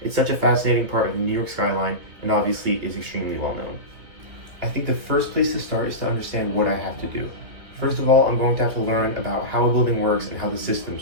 It's such a fascinating part of the New York skyline and obviously is extremely well known. I think the first place to start is to understand what I have to do. First of all, I'm going to have to learn about how a building works and how the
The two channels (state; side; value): late; left; 2.9 ms